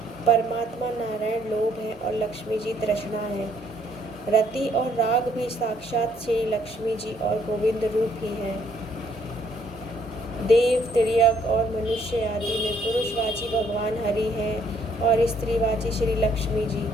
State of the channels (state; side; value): normal; both; correlation 0.67